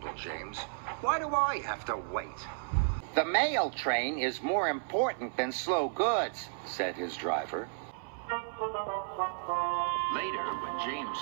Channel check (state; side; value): silent; left; 56 dB below the other